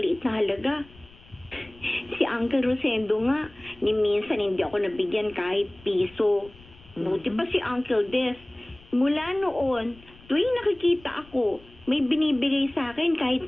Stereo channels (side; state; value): left; noise; rumble, 24 dB below the sound